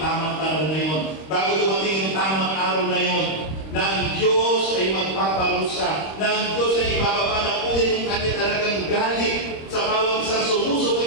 panahon na yun, bago dumating yung tamang araw na yun, na ang Diyos ay magpaparusa, na ang Diyos ay ibababa na po yung kanya talagang galit sa bawat isang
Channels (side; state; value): right; late; 26 ms